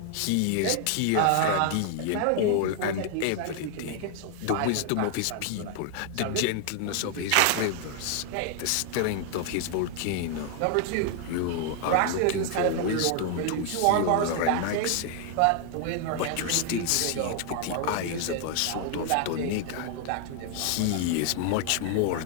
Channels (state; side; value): different; both; correlation 0.00